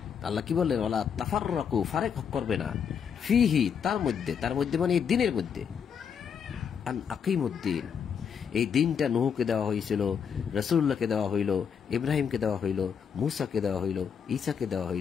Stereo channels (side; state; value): right; quieter; 7.2 dB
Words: আল্লাহ কি বললেন? ওয়ালা তাফাররাকু, ফারেক করবে না, ফিহি, তার মধ্যে, তার মধ্যে মানে এই দিনের মধ্যে। আন আকিমুদ্দিন, এই দিনটা নূহকে দেওয়া হয়েছিল, রাসূলুল্লাহকে দেওয়া হইল, ইব্রাহিমকে দেওয়া হইল, মূসাকে দেওয়া হইল, ঈসাকে দেওয়া